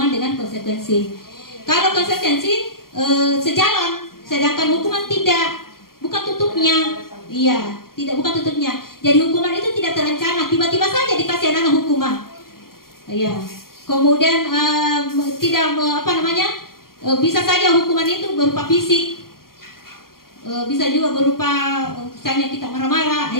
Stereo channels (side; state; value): right; late; 0.92 ms